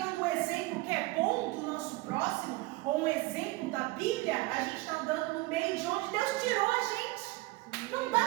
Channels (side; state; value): left; quieter; 21.1 dB